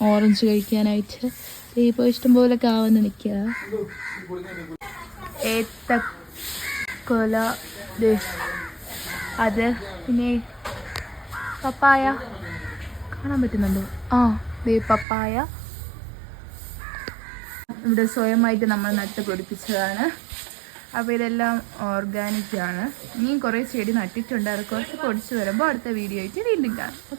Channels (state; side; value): drops out; left; at 15.1 s